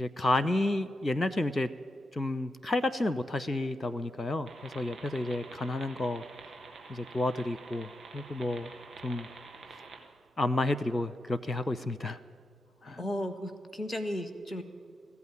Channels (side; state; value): both; normal; correlation 0.87